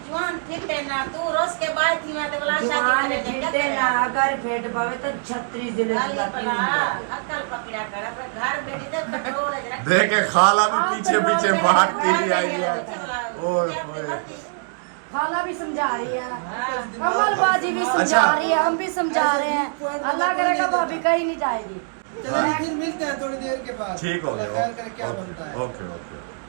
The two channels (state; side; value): silent; left; digital silence